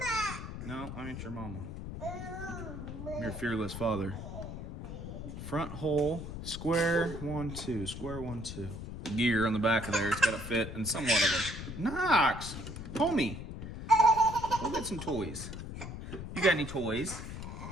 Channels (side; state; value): left; noise; rumble, 8 dB below the sound